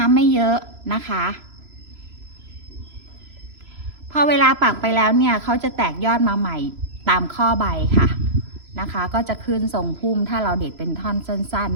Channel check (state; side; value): late; left; 3.0 ms